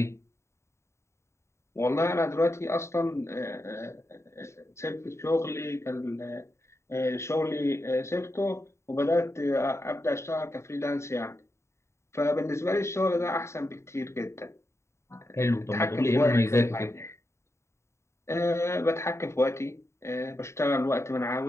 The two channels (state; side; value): late; right; 0.13 ms